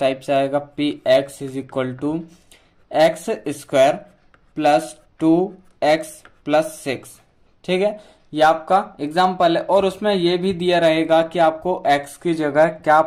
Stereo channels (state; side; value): identical; both; correlation 1.00